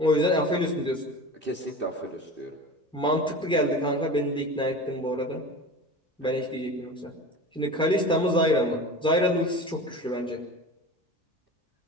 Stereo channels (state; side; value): normal; both; correlation 0.34